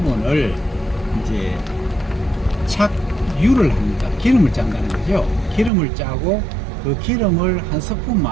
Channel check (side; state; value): left; drops out; at 5.7 s